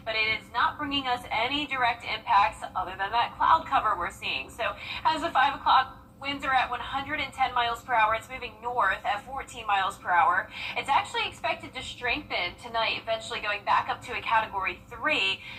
but it is not bringing us any direct impacts other than that cloud cover we're seeing. So as of 5 o'clock, winds are at 110 miles per hour. It's moving north at 14 miles per hour. It's actually expected to strengthen tonight, eventually going back up to a Category 3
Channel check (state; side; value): identical; both; correlation 1.00